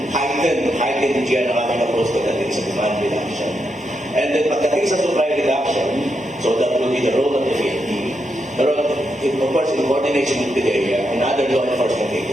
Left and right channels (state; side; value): normal; both; correlation 0.83